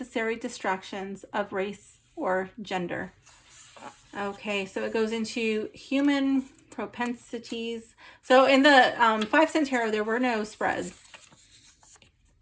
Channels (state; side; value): identical; both; correlation 1.00